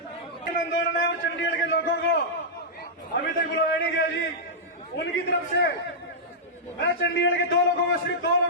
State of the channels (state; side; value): normal; both; correlation -0.11